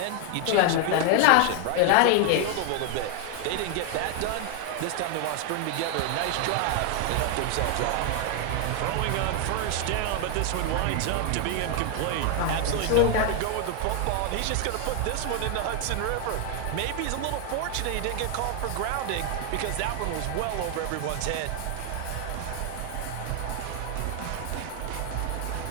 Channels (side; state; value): both; different; correlation 0.00